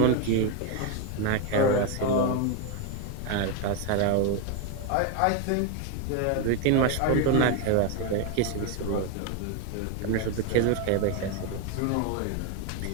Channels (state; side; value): different; both; correlation 0.02